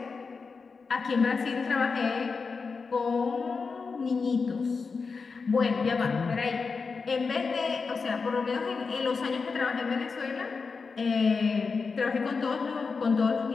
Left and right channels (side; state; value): right; quieter; 4.8 dB